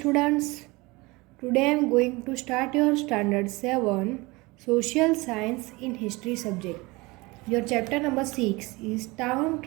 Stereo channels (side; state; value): left; quieter; 23.6 dB